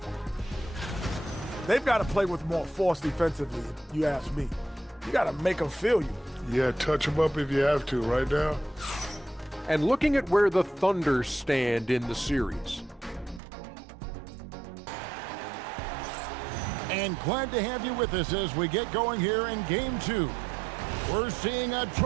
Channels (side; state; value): left; drops out; at 13.4 s